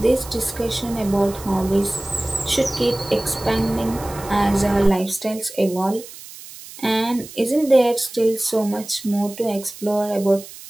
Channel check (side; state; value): right; noise; hiss, 16 dB below the sound